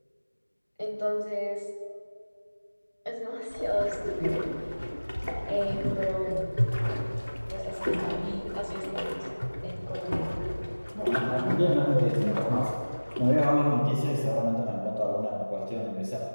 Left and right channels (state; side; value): inverted; both; correlation -1.00